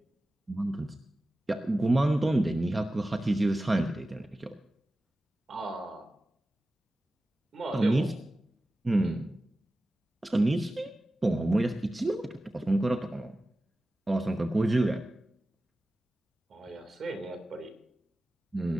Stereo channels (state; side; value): normal; both; correlation 0.95